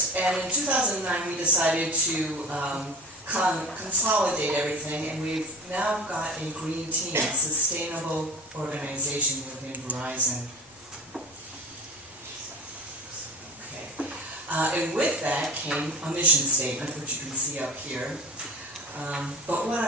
And in 2009 we decided to consolidate everything, and we've now got a green team, a sustainable organization within Verizon. And with that came a mission statement, which you can see up here. But what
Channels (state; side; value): normal; both; correlation 0.35